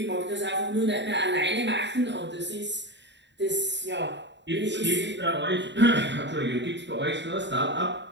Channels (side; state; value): left; late; 0.52 ms